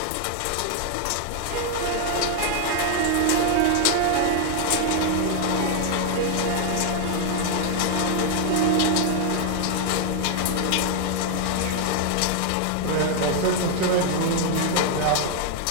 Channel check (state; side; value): different; both; correlation 0.00